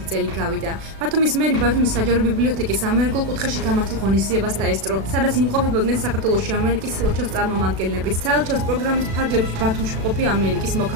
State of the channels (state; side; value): late; left; 36 ms